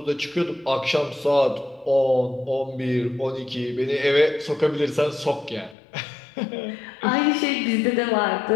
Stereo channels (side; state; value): right; drops out; at 5.8 s